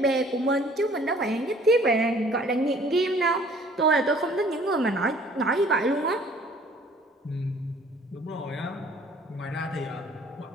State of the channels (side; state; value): both; normal; correlation 0.55